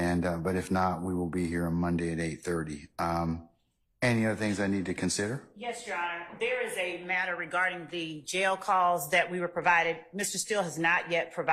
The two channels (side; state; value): both; identical; correlation 1.00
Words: but if not, we will be here on Monday at 8:30. Any other things I need to consider? Yes, Your Honor. There is a matter regarding the jail calls that we were provided. Mr. Steele has not yet